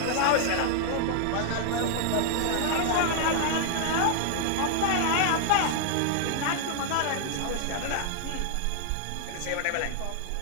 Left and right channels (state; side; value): different; both; correlation 0.00